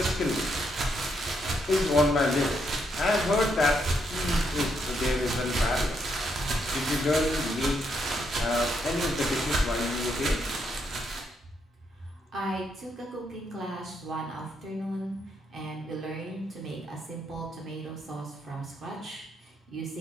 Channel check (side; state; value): both; normal; correlation 0.77